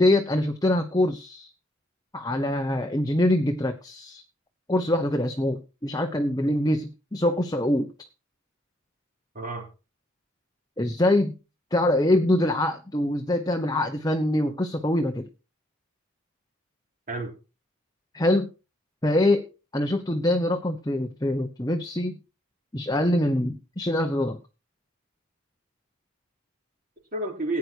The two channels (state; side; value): normal; both; correlation 0.72